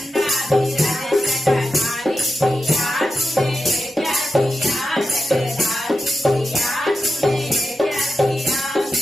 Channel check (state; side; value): normal; both; correlation 0.89